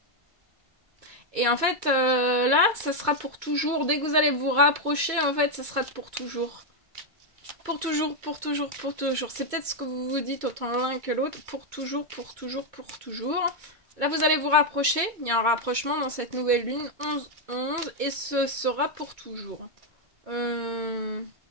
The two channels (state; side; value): late; left; 2.2 ms